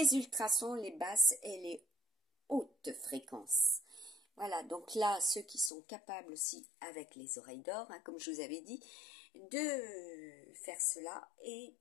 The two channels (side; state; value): right; drops out; at 5.7 s